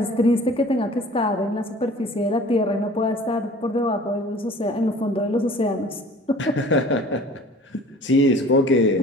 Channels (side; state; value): both; normal; correlation 0.47